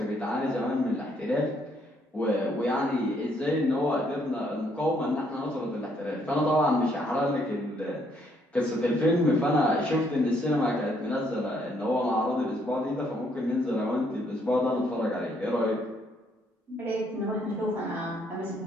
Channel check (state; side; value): normal; both; correlation 0.70